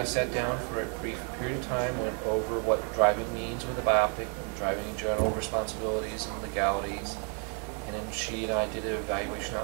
sat down for a brief period of time, went over what driving means with a bioptic, driving in general responsibilities and legalities. And then she and I did an evaluation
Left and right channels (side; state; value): left; quieter; 38.9 dB